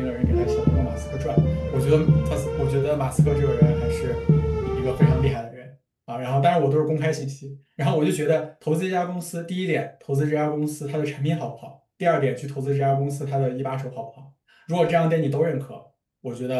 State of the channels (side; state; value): both; identical; correlation 1.00